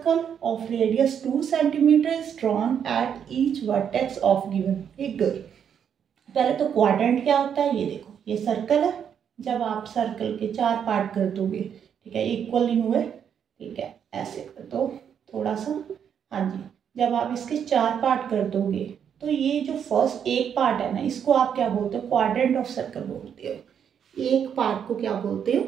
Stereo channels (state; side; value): quieter; left; 8.2 dB